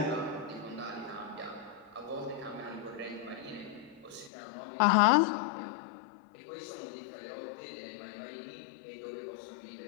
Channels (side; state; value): right; drops out; at 4.3 s